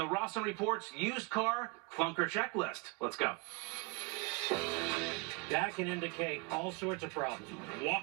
Rawson Report's used car Clunker Checklist. Let's go. That can indicate all sorts of problems.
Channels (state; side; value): quieter; left; 28.7 dB